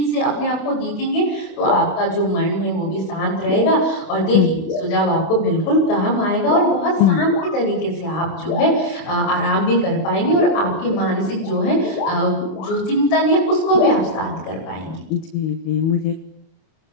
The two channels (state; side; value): late; right; 31 ms